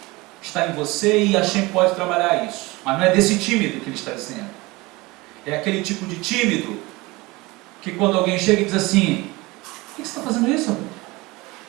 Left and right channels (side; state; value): left; quieter; 22.4 dB